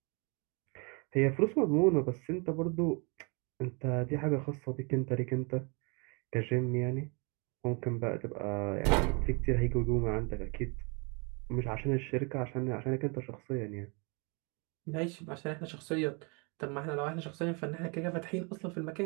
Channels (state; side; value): quieter; left; 32.6 dB